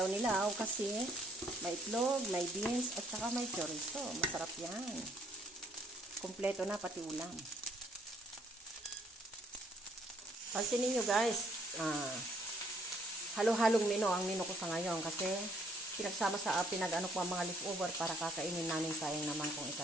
kasi may itlog, may beans, at saka may chorizo. Masarap yan. Kompleto na pati ulam. Pansinin nyo guys, halo-halong menu ang menu ko sa ngayon kasi pinagsama sa pinag-ano ko ang mga leftover para kakainin namin, sayang naman kung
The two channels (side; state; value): both; normal; correlation 0.66